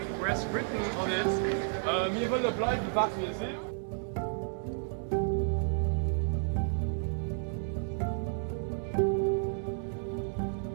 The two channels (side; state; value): left; silent; digital silence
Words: where it's written on it, wir wollen bleiben, was wir sind.